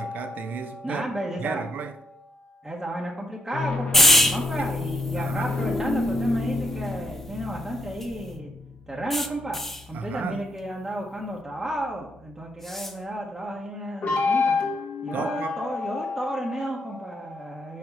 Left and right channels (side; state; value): both; normal; correlation 0.74